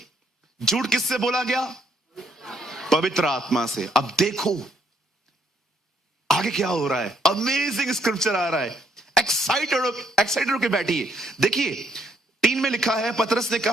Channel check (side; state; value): both; normal; correlation 0.70